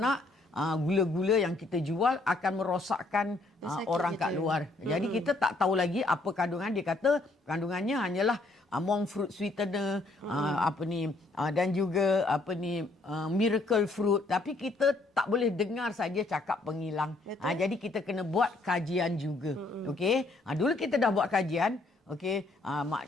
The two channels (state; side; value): quieter; right; 3.1 dB